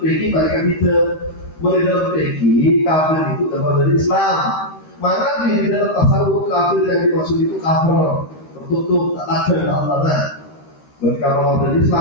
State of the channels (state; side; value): late; right; 13 ms